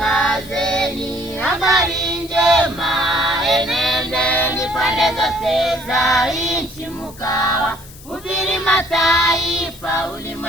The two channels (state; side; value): noise; left; hiss, 20 dB below the sound